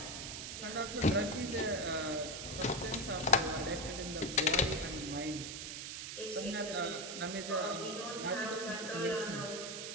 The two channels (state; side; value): noise; right; hiss, 6 dB below the sound